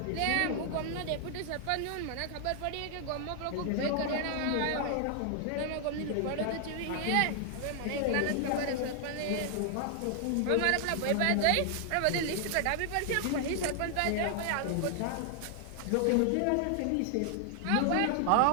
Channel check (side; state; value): both; different; correlation 0.00